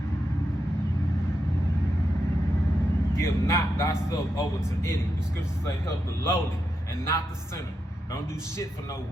Give not thyself over to any. The scriptures say help the lowly and not the sinner. Don't do shit for no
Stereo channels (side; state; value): both; normal; correlation 0.85